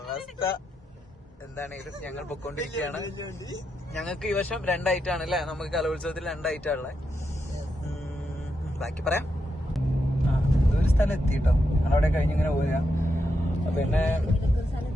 എന്താണെങ്കിലും ഞങ്ങൾ പൊക്കോണ്ടിരിക്കുകയാണ്. ഞങ്ങൾക്ക് ഈ വർഷം 2 ഐറ്റാണ് അല്ലേ? നമുക്ക് കലോത്സവത്തിൽ 2 ഐറ്റാണുള്ളത്. ബാക്കി പറയാം. ഒരു സ്ഥലം എത്തിട്ടോ, ഞങ്ങളവിടെ കഴിഞ്ഞിങ്ങനെ പോരാ. പിന്നെ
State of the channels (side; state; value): both; normal; correlation 0.84